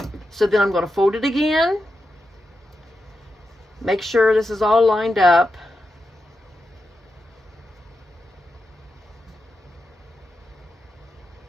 So then I'm going to fold it again, make sure this is all lined up.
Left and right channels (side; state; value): both; normal; correlation 0.88